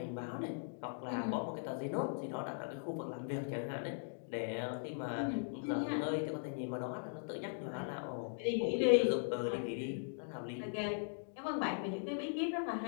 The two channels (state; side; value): silent; right; digital silence